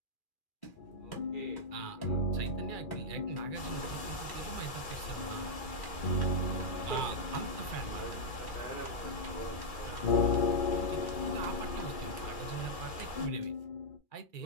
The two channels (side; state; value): right; late; 2.4 ms